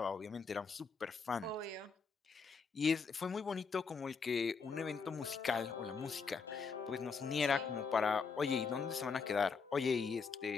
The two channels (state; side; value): quieter; right; 5.2 dB